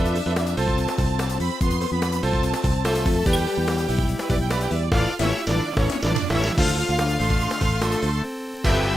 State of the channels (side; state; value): both; normal; correlation 0.90